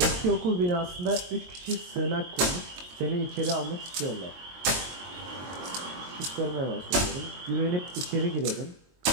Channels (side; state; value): left; late; 22 ms